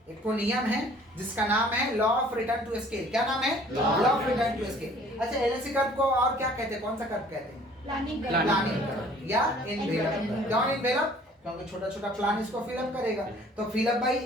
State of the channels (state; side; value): normal; both; correlation 0.54